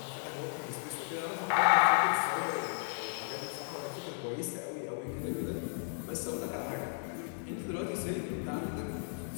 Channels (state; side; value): silent; right; 55 dB below the other